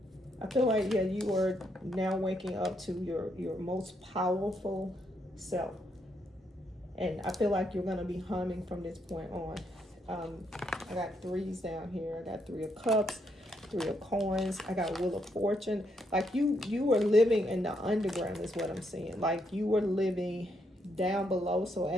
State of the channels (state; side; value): normal; both; correlation 0.76